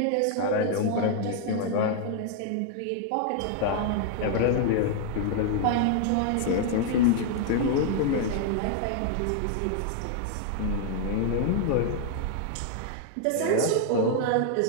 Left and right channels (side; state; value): both; different; correlation 0.00